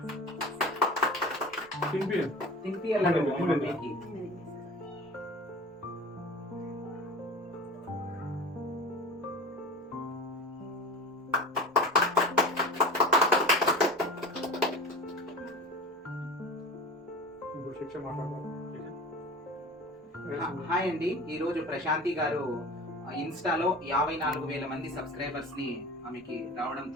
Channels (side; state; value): both; normal; correlation 0.35